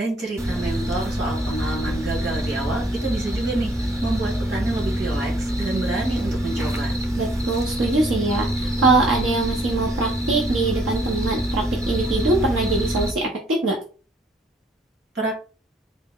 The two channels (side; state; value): both; normal; correlation 0.63